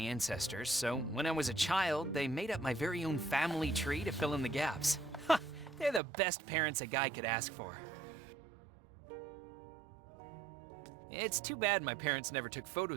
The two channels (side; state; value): left; drops out; at 6.0 s